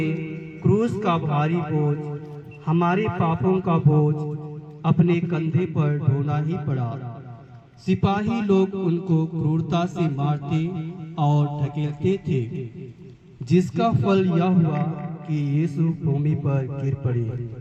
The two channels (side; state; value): both; identical; correlation 1.00